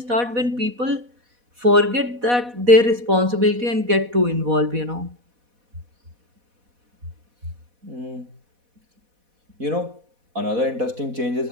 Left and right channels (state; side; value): late; left; 4.1 ms